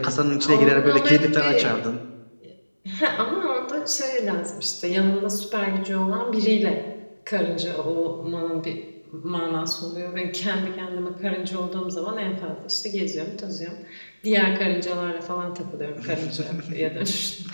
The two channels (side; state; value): both; inverted; correlation -1.00